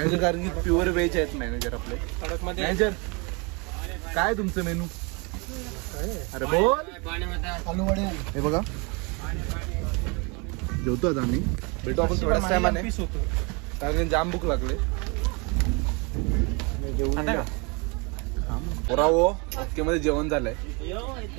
कारण की प्युअर व्हेज आहेत मॅनेजर आपले. मॅनेजर काय तुमचं मेनू? अरे बोल. हे बघा जेवतो आता आम्ही. भेटू आपण थोड्याच टायमाने, कारण जाम भूक लागले. ओके मध्ये जेवण झालंय.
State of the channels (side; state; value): left; quieter; 30.3 dB